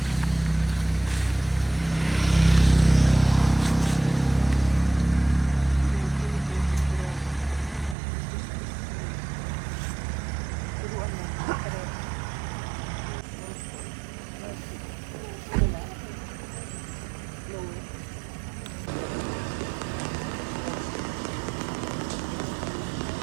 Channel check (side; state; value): left; drops out; at 8.0 s